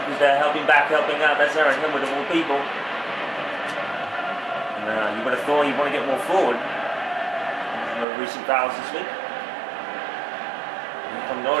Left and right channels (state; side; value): drops out; left; at 8.1 s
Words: Who's there helping back, helping out. That's Aaron Hill of all people. And, you would have thought you'd want to get more forward. No recent fouls this week. And from